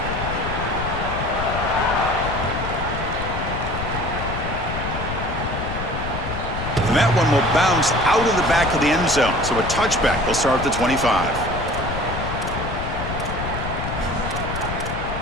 And that one will bounce out of the back of the end zone. So a touchback. They'll start at the 25.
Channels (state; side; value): noise; left; rumble, 5 dB below the sound